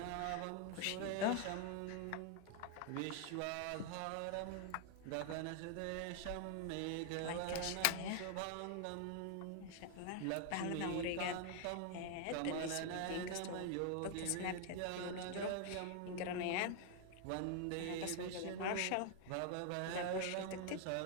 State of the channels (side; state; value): both; different; correlation 0.00